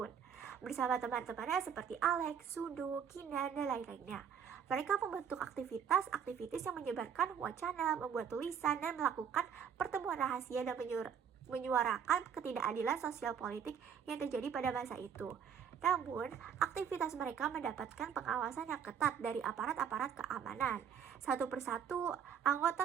bersama teman-temannya seperti Alex, Sundu, Kinan, dan lain-lainnya. Mereka membentuk aktivitas yang menyebarkan wacana, membuat tulisan, dan melakukan pertemuan rahasia dan menyuarakan ketidakadilan sosial politik yang terjadi pada masa itu. Namun, aktivitas mereka mendapatkan pengawasan yang ketat dari aparat-aparat keamanan. Satu persatu,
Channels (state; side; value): quieter; left; 7.7 dB